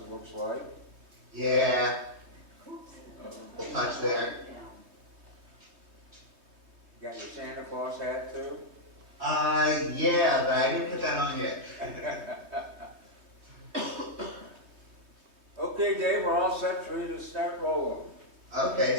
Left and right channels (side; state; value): left; late; 3.2 ms